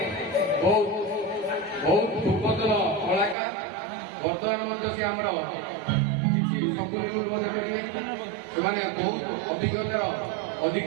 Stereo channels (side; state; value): left; drops out; at 3.4 s